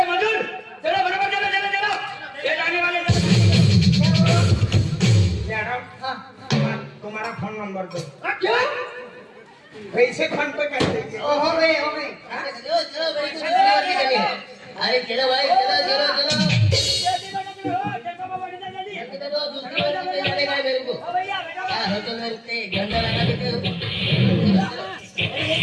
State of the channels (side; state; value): both; identical; correlation 1.00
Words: मजदूर, चलो बराबर चलो चलो चलो। ये जाने वाले मैडम, हाँ, तुम्हारा फोन नंबर दो। क्यों? पैसे फोन पे कर देंगे। ओ, हो गए हो गए। चलो चलो भाई, चलो। अरे चलो भाई, चलो चलो चलो। चलो, दूसरी बार नहीं जानेगा मेरे को। क्या होटल में रुकते हैं, घंटा लगा देते हो।